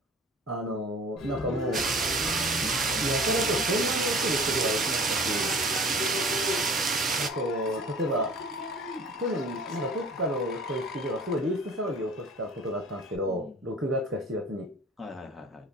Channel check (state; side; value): normal; both; correlation 0.45